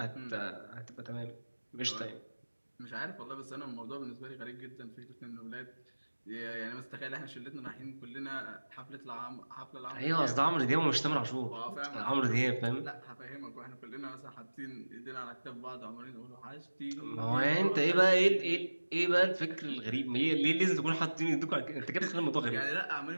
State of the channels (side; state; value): both; inverted; correlation -1.00